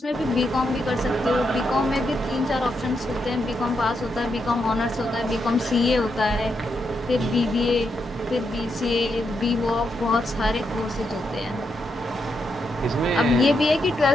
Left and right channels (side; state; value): both; normal; correlation 0.82